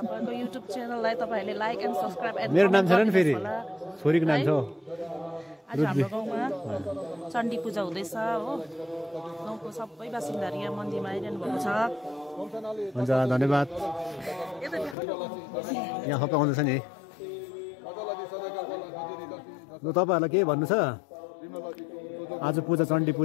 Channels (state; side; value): drops out; right; at 15.0 s